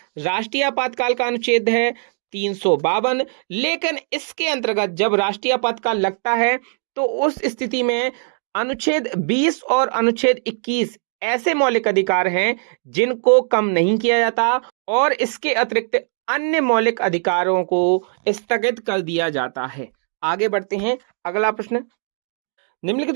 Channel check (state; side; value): silent; left; 64 dB below the other